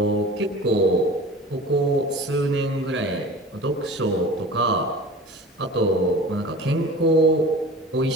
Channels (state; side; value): normal; both; correlation 0.39